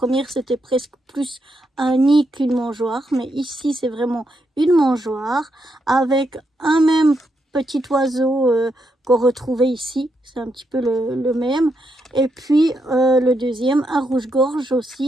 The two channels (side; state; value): both; normal; correlation 0.80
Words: c'était presque plus un nid qu'une mangeoire. Mais ici, c'est vraiment une mangeoire avec un même petit oiseau qu'on retrouvait ici. C'est un petit peu le même. Et puis, le deuxième, un rouge-gorge